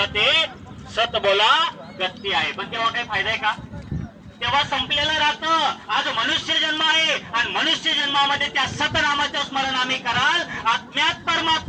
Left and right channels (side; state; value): both; identical; correlation 1.00